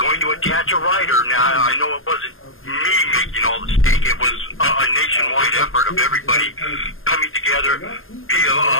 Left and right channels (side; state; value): right; late; 0.60 ms